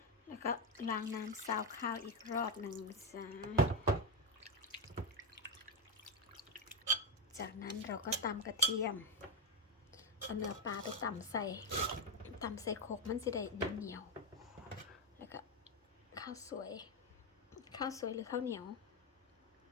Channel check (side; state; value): both; normal; correlation 0.08